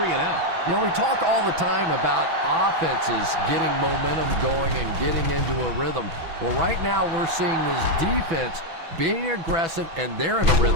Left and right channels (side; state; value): left; late; 6.1 ms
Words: and out. You know, we talk all the time about offenses getting momentum going and getting into a rhythm. Well, right now we're seeing this defense being aggressive, and they're in a